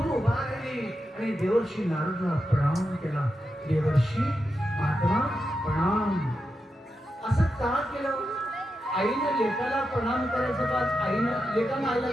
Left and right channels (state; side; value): normal; both; correlation 0.88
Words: उभा राहिली आणि देवर्षी नारदाला प्रणाम केला. देवर्षी महात्मा प्रणाम. असं का केलं? आईने लेकाला प्रणाम करायचं का आईनं लेकानं आईला